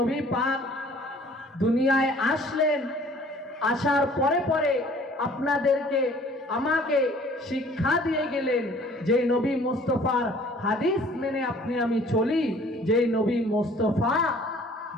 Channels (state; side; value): normal; both; correlation 0.53